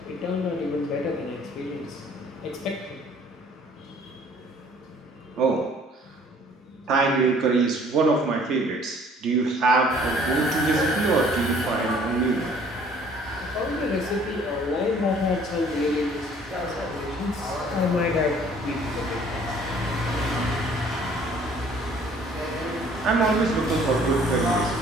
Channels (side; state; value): both; normal; correlation 0.56